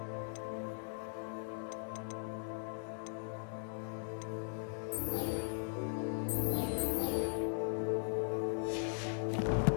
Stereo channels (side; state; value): right; silent; digital silence